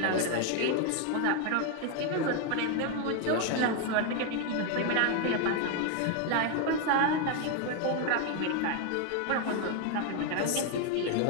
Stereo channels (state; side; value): different; both; correlation 0.01